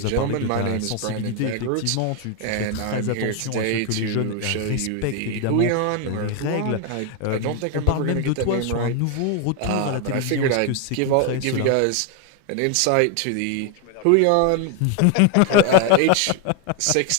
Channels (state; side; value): different; both; correlation 0.01